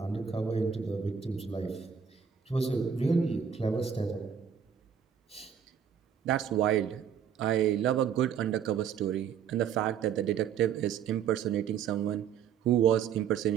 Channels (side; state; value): left; quieter; 7.8 dB